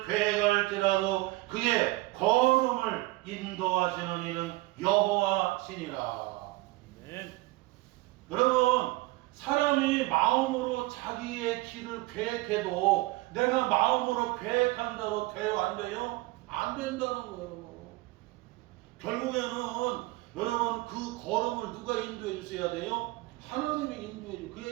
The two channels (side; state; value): left; quieter; 20.5 dB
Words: 계획할지라도 그의 걸음을 인도하시는 이는 여호와시니라. 네. 여러분, 사람이 마음으로 자기의 길을 계획해도 내가 마음으로 계획한다고 돼요? 안 돼요? 안 된다는 거예요. 결국에는 여러분 그 걸음을 누가 인도해 주셔야 돼요? 하나님이 인도해 줘. 그